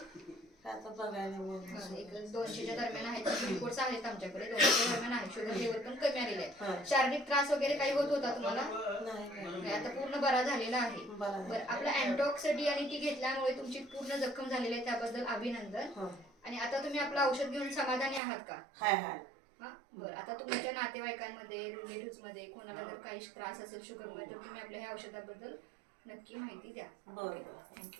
आता बघायला एक 200च्या दरम्यान आहे. रिपोर्ट्स आहेत आमच्याकडे. 200च्या दरम्यान आहे. शुगर लेवल पण कमी आलेली आहे. शारीरिक त्रास वगैरे काही होत होता तुम्हाला? नाही. आता पूर्ण बरा झालेला आहे. बरं आपला अँटीऑक्सिडंट आणि ती घेतल्यामुळे तुमची पूर्ण जखम झालेली आहे, त्याबद्दल अभिनंदन. आणि आता तुम्ही आपलं औषध घेऊन समाधानी आहात का? हाय. बरं आता तुमच्या नातेवाईकांमध्ये रिलेटिव्ह मध्ये कोणाला जर काही त्रास असेल शुगरमध्ये तर तुम्ही आपल्या ह्या औषधाबद्दल नक्की माहिती द्या. बरं.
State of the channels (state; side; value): drops out; left; at 18.2 s